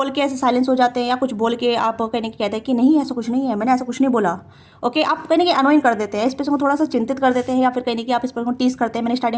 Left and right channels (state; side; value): identical; both; correlation 1.00